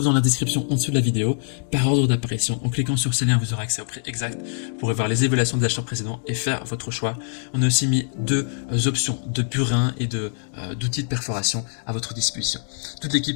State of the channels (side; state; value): right; silent; digital silence